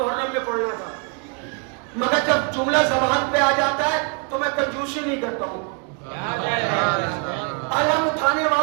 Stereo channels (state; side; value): quieter; left; 36.1 dB